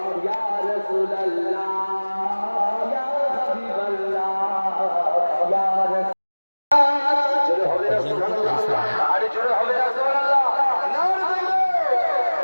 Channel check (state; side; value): inverted; both; correlation -1.00